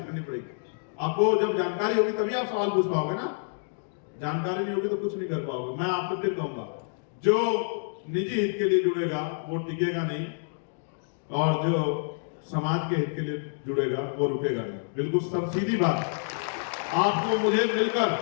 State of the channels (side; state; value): right; silent; digital silence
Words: करनी पड़ेगी। आपको जब जानकारी होगी तभी आप सवाल पूछ पाओगे ना, जानकारी नहीं होगी तो कुछ नहीं कर पाओगे। मैं आपको फिर कहूंगा, जो निजी हित के लिए जुड़ेगा वो टिकेगा नहीं, और जो समाज के हित के लिए जुड़ेगा वो रुकेगा नहीं। बिल्कुल सब सीधी बात। आपको मुझे मिलकर,